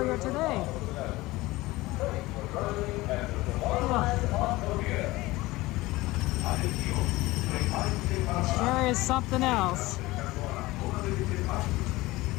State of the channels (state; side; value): quieter; right; 19.7 dB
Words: today. It sure is something else.